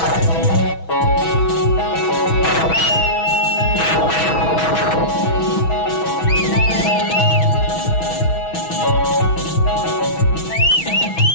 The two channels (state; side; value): late; right; 6.2 ms